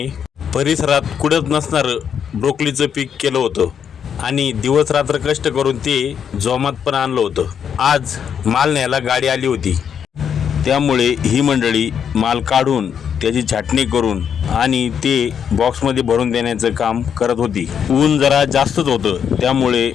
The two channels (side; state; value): right; quieter; 7.9 dB